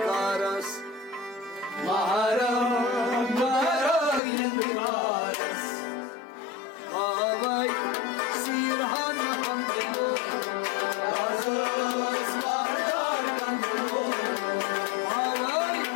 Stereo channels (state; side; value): drops out; right; at 4.2 s